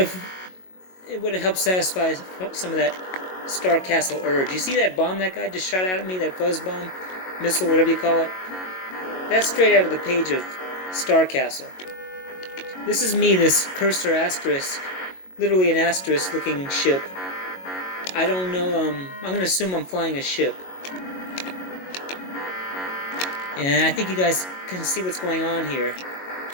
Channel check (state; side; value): late; right; 22 ms